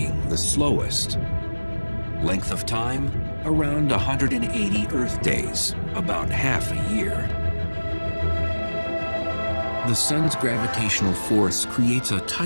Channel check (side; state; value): both; inverted; correlation -1.00